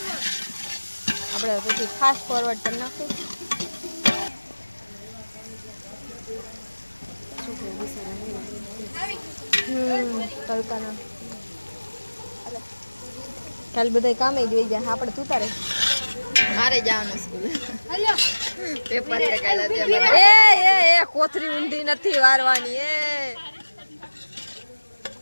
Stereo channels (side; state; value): both; inverted; correlation -1.00